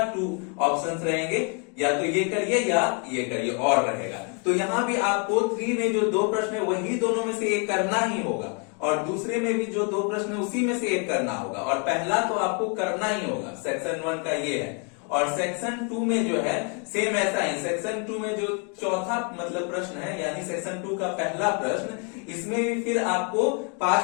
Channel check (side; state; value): right; quieter; 37.3 dB